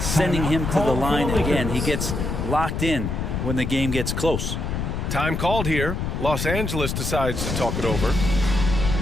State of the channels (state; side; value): noise; left; rumble, 2 dB below the sound